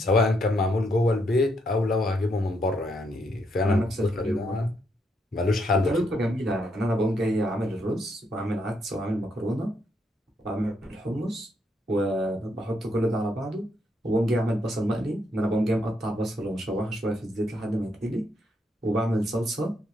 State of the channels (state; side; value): normal; both; correlation 0.76